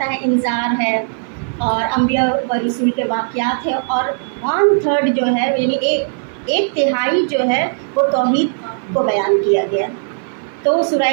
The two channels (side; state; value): left; silent; 56 dB below the other